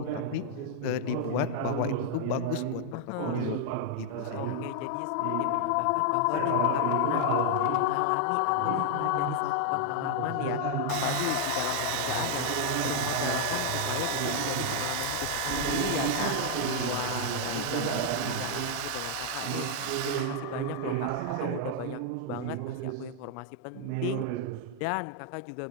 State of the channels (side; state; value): both; different; correlation 0.00